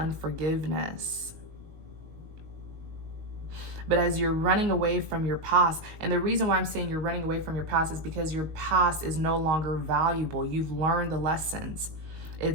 But as you're running away from your past, and the reason why I'm saying you're running away from your past is because your past is no longer valuable. You've learned the lessons.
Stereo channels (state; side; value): late; left; 19 ms